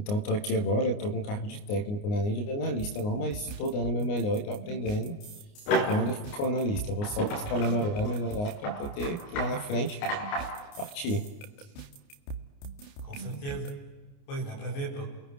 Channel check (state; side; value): late; right; 29 ms